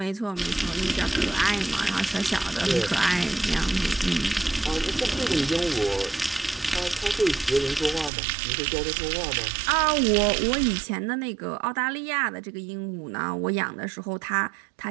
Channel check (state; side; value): drops out; left; at 8.1 s